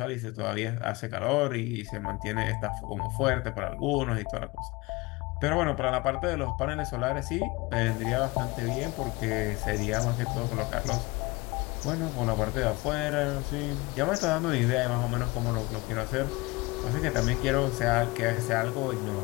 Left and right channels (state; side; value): quieter; right; 23.8 dB